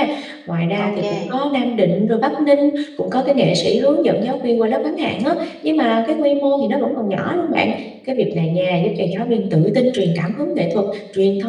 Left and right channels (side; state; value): both; identical; correlation 1.00